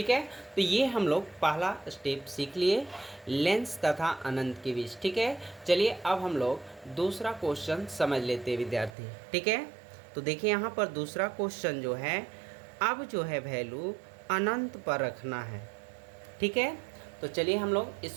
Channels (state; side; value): drops out; left; at 8.9 s